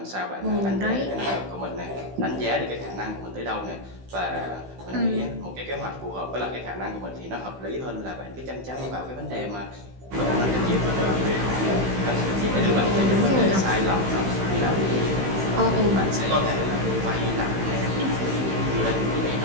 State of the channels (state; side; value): late; left; 16 ms